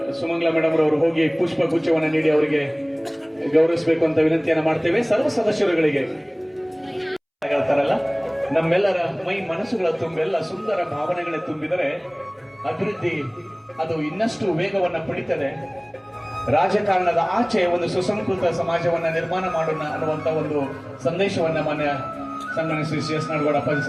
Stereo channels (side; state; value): both; identical; correlation 1.00